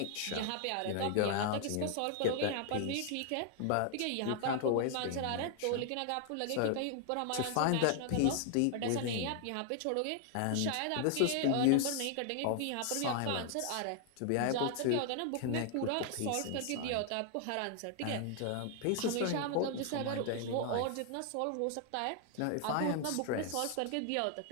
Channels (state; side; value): different; both; correlation 0.00